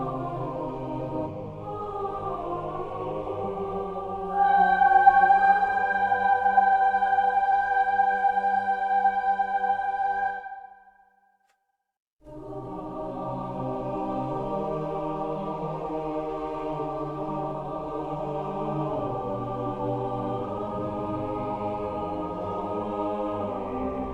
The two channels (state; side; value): identical; both; correlation 1.00